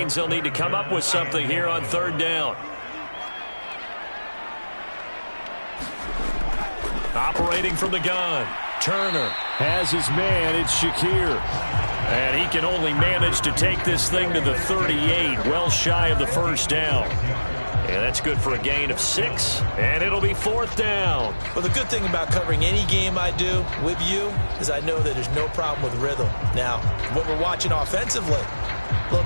they'll need to come up with something here on 3rd down. Operating from the gun. Turner has his man. It's Shakir. And he can only manage to take this thing to the 38, well shy of the first down. And that's good for a gain of 6, and it'll be 4th down. Well, the good thing about covering any game I do with you is I know that there's no problem with rhythm. Now, when we're watching offensively, a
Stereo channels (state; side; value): inverted; both; correlation -1.00